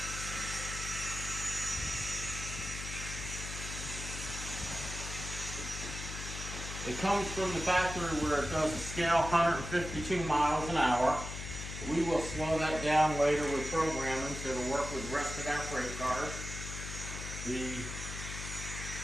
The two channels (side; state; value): left; noise; hum, 7 dB below the sound